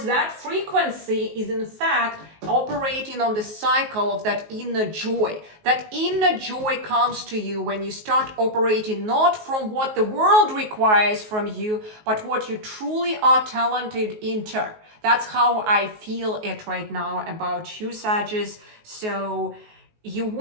that frequency is in fact operating on the cycle of that inner joy. That inner joy comes to you when you start operating not from what the world requires from you, but what you truly are talented into. That's how I feel it right now about you, Sagittarius. So you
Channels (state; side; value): late; left; 19 ms